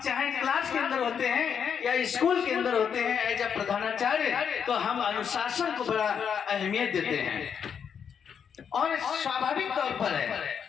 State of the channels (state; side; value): quieter; right; 7.4 dB